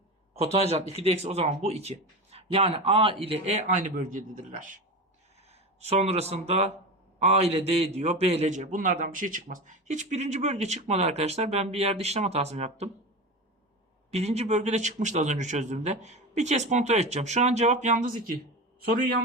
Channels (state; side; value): normal; both; correlation 0.25